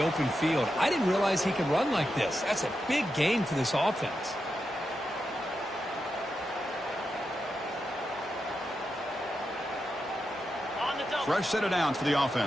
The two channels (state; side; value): normal; both; correlation 0.87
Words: open field. I didn't realize he could run like this. That's a big gain for this offense. Fresh set of downs for the